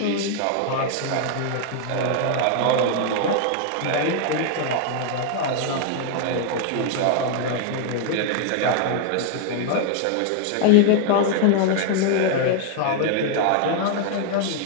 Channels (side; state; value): both; different; correlation 0.00